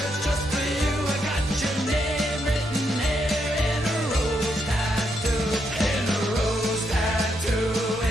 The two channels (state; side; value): normal; both; correlation 0.79